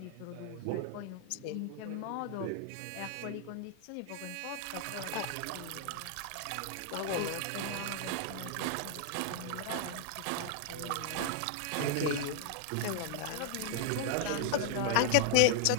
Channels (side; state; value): both; different; correlation -0.01